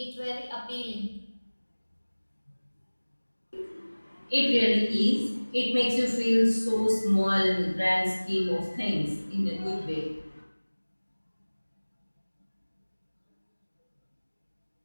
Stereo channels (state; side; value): inverted; both; correlation -1.00